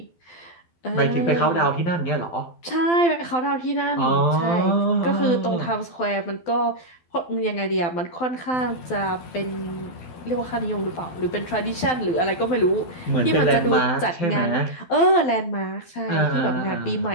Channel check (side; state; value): right; late; 12 ms